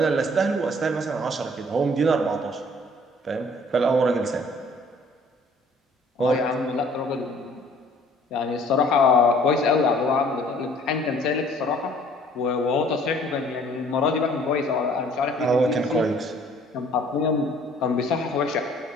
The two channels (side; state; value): both; normal; correlation 0.56